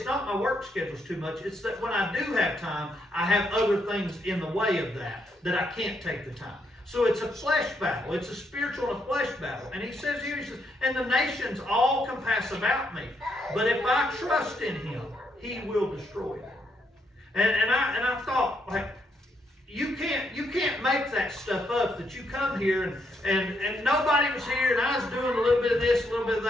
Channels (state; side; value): normal; both; correlation 0.77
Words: not my work schedule's too much. It's that when I do have time, I have other things in the way of that I can't take the time. So it's a flesh battle. It's a spiritual and a flesh battle. And he says here, he says, and the nations all compass about me. But if I trust in him, he will destroy them. And I thought, like, you can't make that stuff up, that you come here and nobody was here, and I was doing a little bit of this, a little bit of